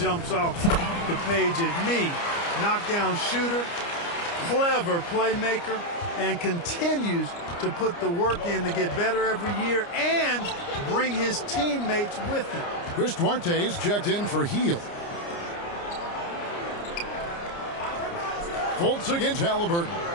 off the page at me. Knockdown shooter, clever playmaker, and continues to put the work in to get better every year and bring his teammates with him. Chris Duarte's checked in for Heel. Fultz against Halliburton.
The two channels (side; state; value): right; late; 29 ms